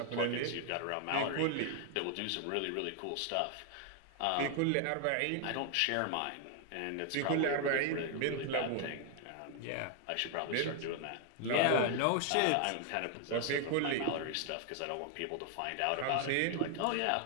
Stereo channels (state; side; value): different; both; correlation 0.00